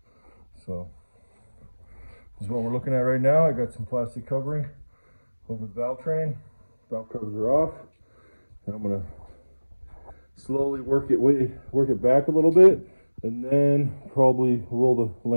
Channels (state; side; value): inverted; both; correlation -1.00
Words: So this is what we're looking at right now. I got some plastic covering over the valve train. Valve covers are off, and I'm gonna slowly work it back a little bit, and then probably roll the